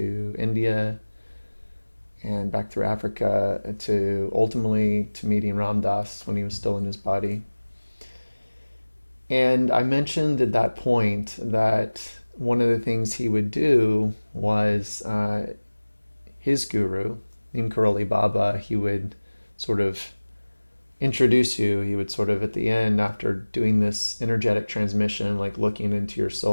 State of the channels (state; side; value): inverted; both; correlation -1.00